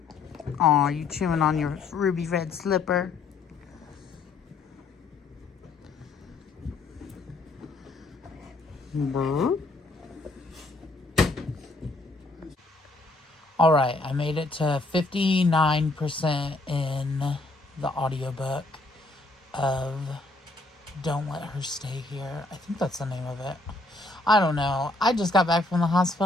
Aw, you chewing on your ruby red slipper? Alright, I made it to 59% in the audiobook of Don't Let Her Stay Here. I think that's the name of it. I don't know. I just got back from the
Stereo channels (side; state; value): right; quieter; 3.2 dB